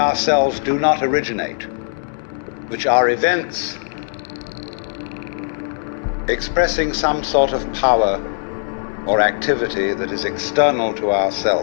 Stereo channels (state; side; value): silent; right; digital silence